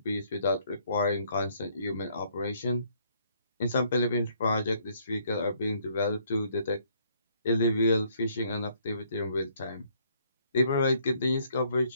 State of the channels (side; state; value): both; inverted; correlation -0.66